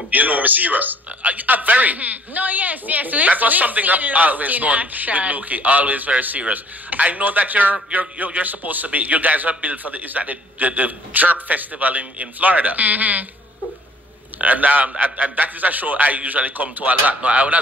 you know me serious. Very. No, yes. That was something I've always known with Lukie, always very serious. I know that you're supposed to be, you guys are built for the Jerk Festival in Florida. And that is a show I usually come to a lot. Now, I would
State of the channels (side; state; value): both; normal; correlation 0.57